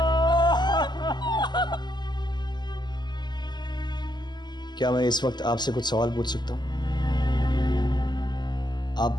क्या मैं इस वक्त आपसे कुछ सवाल पूछ सकता हूँ?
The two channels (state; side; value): late; right; 0.21 ms